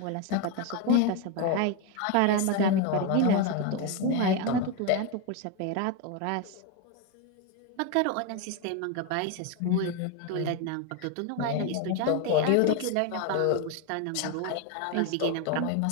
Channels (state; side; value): different; both; correlation 0.02